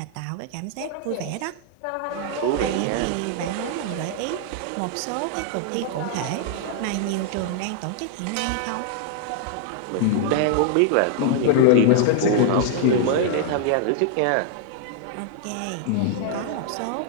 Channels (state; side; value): different; both; correlation 0.00